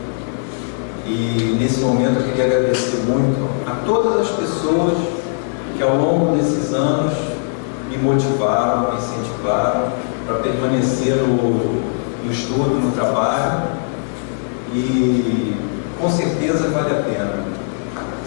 E nesse momento eu queria agradecer muito a todas as pessoas que ao longo desses anos me motivaram, me incentivaram para permanecer no estudo, no trabalho, e com certeza vale a pena. Ou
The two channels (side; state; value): right; silent; digital silence